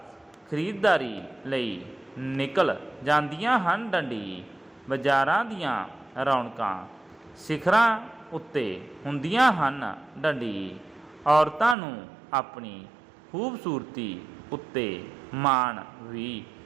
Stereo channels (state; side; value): drops out; left; at 11.8 s